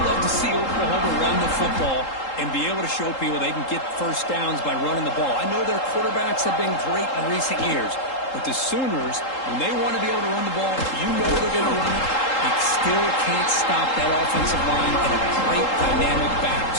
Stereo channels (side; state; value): right; late; 3.8 ms